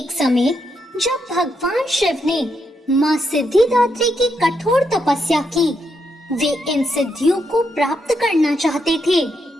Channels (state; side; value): normal; both; correlation 0.80